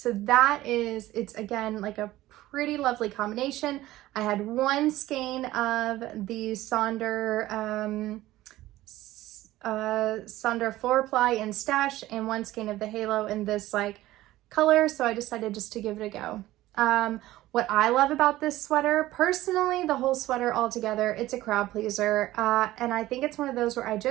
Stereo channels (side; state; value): left; quieter; 16.1 dB